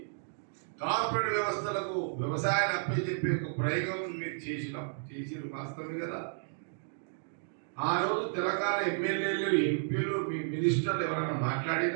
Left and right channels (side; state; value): left; silent; digital silence